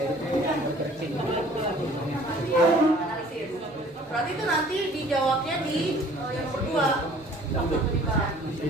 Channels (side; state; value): both; normal; correlation 0.53